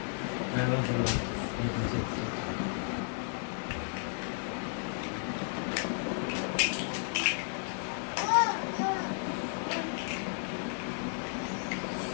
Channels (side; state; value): right; silent; 55 dB below the other